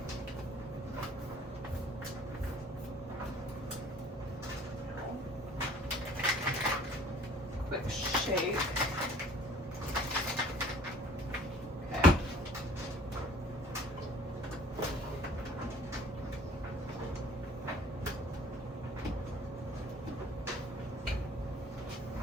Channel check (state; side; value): normal; both; correlation 0.53